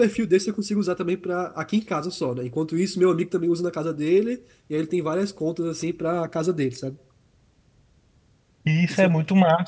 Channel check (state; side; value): identical; both; correlation 1.00